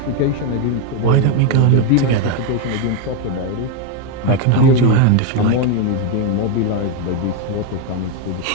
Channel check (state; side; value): different; both; correlation 0.02